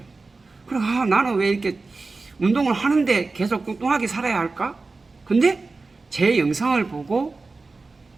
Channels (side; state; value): left; quieter; 3.8 dB